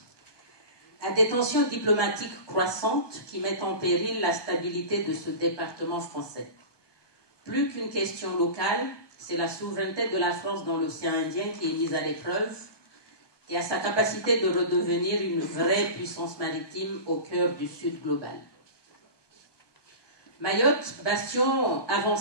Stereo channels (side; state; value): right; late; 1.2 ms